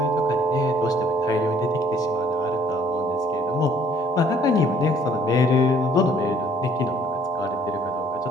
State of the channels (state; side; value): normal; both; correlation 0.60